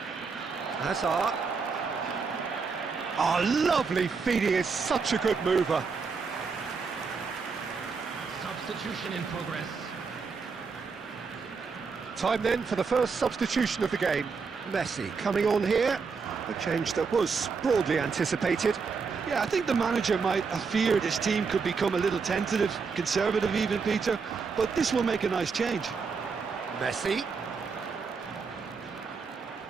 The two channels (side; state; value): left; quieter; 5.1 dB